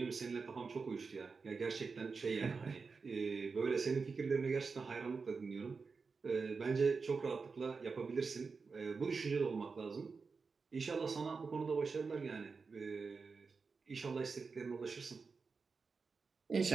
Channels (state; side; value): quieter; left; 4.8 dB